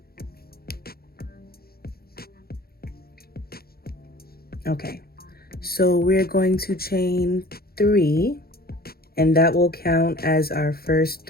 Okay, so we're going to chain 3, and that will count as our first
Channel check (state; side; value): late; right; 0.44 ms